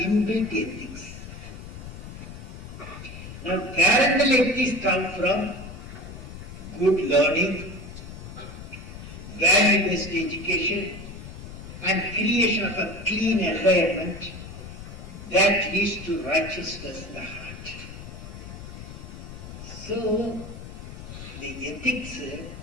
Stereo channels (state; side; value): noise; left; rumble, 12 dB below the sound